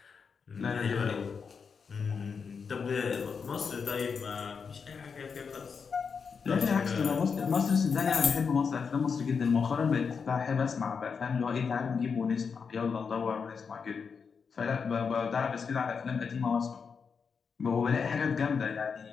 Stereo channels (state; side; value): quieter; right; 5.8 dB